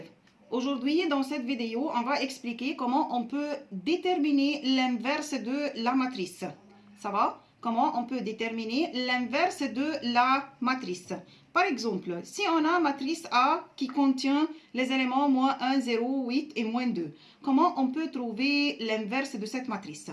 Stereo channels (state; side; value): identical; both; correlation 1.00